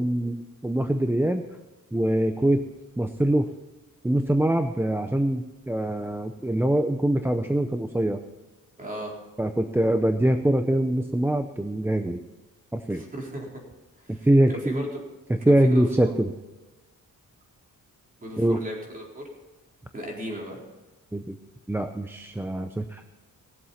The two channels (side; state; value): both; normal; correlation 0.94